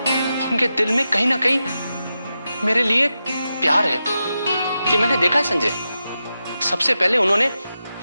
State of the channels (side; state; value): both; inverted; correlation -0.90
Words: उनके दिल में कहीं ना कहीं मेरे लिए प्यार है। कि मैंने देखा है संजय, सबसे पहले उन्होंने